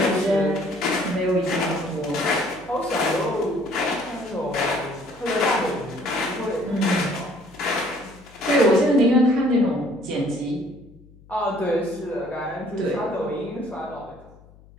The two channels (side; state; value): left; noise; hum, 24 dB below the sound